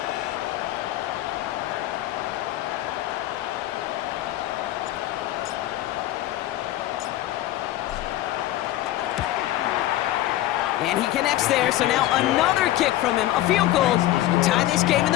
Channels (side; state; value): right; quieter; 14.8 dB